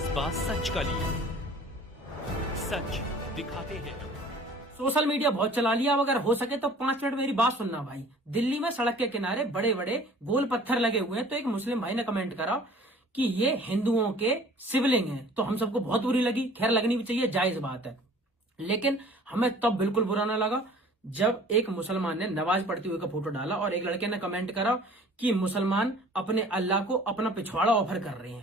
सच का लिए, सच दिखाते हैं। सोशल मीडिया बहुत चला लिया। अब अगर हो सके तो 5 मिनट मेरी बात सुनना भाई। दिल्ली में सड़क के किनारे बड़े बड़े गोल पत्थर लगे हुए हैं, तो एक मुस्लिम भाई ने कमेंट करा कि ये हिंदुओं के शिवलिंग हैं। तो हम सबको बहुत बुरी लगी। खैर, लगनी भी चाहिए, जायज बात है। लेकिन हमें तब बिल्कुल बुरा ना लगा जब एक मुसलमान ने नमाज पढ़ते हुए का फोटो डाला और एक लड़के ने कमेंट करा कि मुसलमान अपने अल्लाह को अपना पिछवाड़ा ऑफर कर रहे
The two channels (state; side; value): normal; both; correlation 0.49